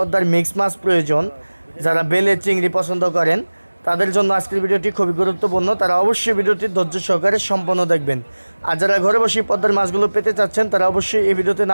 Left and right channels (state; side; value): inverted; both; correlation -1.00